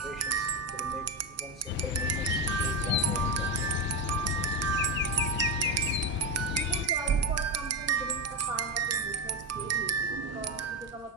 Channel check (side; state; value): both; normal; correlation 0.12